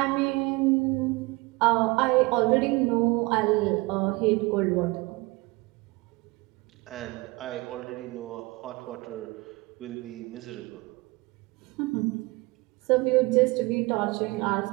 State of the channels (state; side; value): quieter; left; 24.2 dB